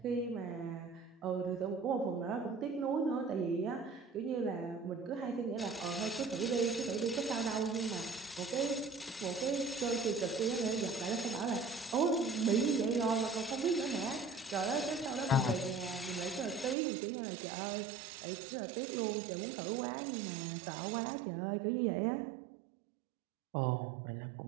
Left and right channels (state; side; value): drops out; left; at 16.8 s